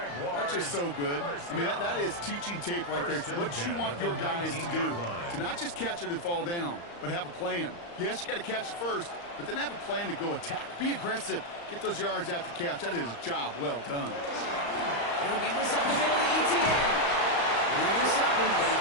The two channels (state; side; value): late; right; 35 ms